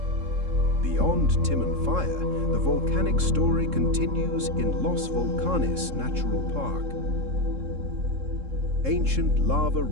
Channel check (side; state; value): left; late; 3.7 ms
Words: Beyond Timanfaya, the volcanic story continues in Los Volcanes Natural Park. Ancient lava